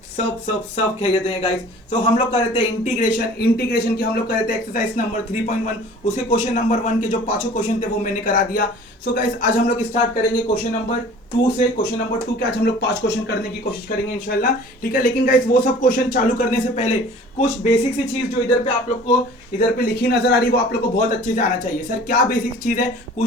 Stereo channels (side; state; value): both; normal; correlation 0.46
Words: सब खैरियत हैं गाइस। सो हम लोग कर रहे थे इंटीग्रेशन की हम लोग कर रहे थे एक्सरसाइज नंबर 3.1। उसके क्वेश्चन नंबर 1 के जो पांचों क्वेश्चन थे वो मैंने करा दिया। सो गाइस आज हम लोग स्टार्ट करेंगे क्वेश्चन नंबर 2 से। क्वेश्चन नंबर 2 के आज हम लोग 5 क्वेश्चन करने की कोशिश करेंगे इंशाल्लाह, ठीक है। लेकिन गाइस वो सब क्वेश्चन चालू करने से पहले कुछ बेसिक सी चीज जो इधर पे आप लोग को इधर पे लिखी नजर आ रही है वो आप लोग को बहुत अच्छे से आना चाहिए। सर क्या बेसिक चीज है,